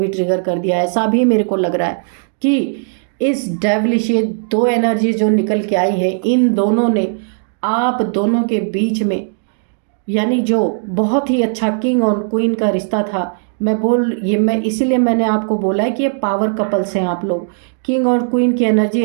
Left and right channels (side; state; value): left; silent; digital silence